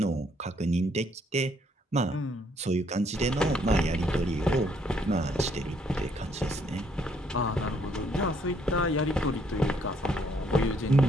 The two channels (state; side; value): normal; both; correlation 0.68